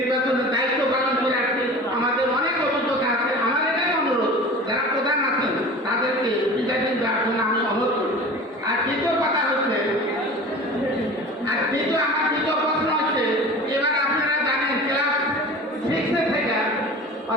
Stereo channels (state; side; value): normal; both; correlation 0.37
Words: দায়িত্ব পালন করে আসছি, আমাদের অনেক অভিজ্ঞতা আছে। আমার এটাই অনুরোধ, যারা প্রধান আছেন তাদেরকে প্রিজাইডিং দেওয়ার জন্য আমি অনুরোধ করি। আর দ্বিতীয় কথা হচ্ছে, আমার দ্বিতীয় প্রশ্ন হচ্ছে, এবার আপনারা জানেন ক্লাস 6 থেকে,